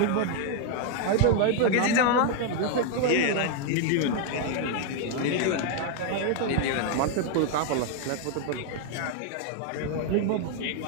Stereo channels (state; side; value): different; both; correlation 0.00